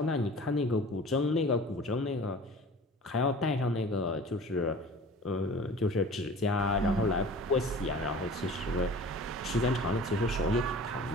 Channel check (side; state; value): both; normal; correlation 0.42